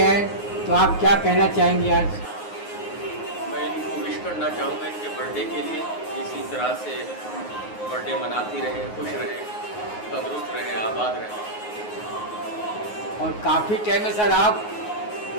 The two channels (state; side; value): late; right; 9.5 ms